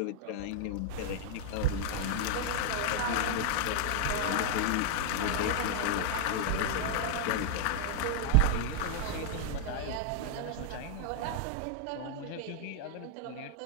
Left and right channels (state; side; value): different; both; correlation 0.00